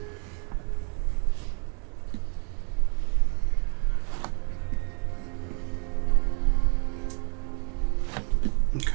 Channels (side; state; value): left; quieter; 39.4 dB